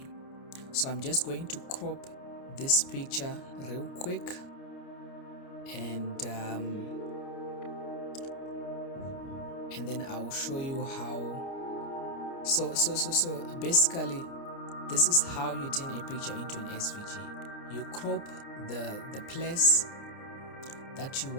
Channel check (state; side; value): late; right; 29 ms